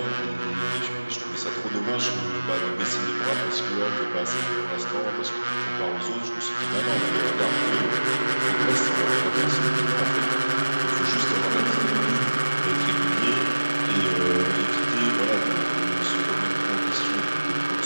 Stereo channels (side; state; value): both; inverted; correlation -1.00